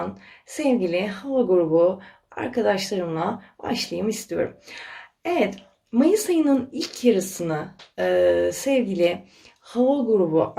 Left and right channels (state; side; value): identical; both; correlation 1.00